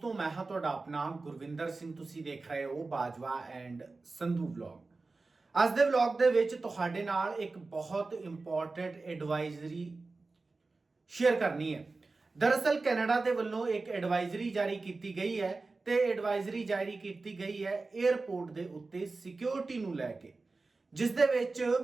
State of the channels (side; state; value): left; quieter; 3.7 dB